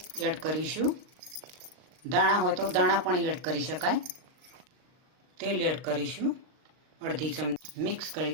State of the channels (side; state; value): left; late; 39 ms